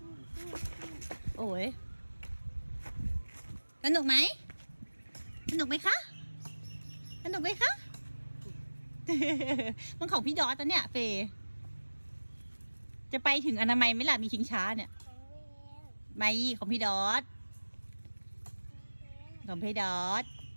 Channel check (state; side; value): inverted; both; correlation -1.00